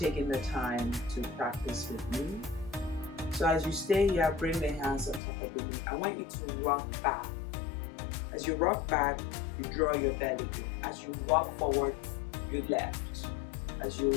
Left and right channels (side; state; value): right; drops out; at 5.2 s